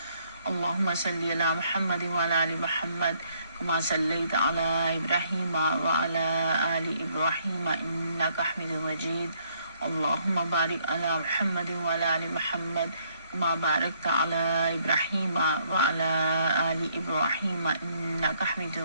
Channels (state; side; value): inverted; both; correlation -0.68